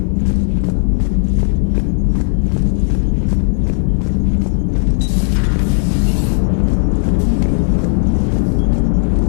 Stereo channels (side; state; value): right; silent; digital silence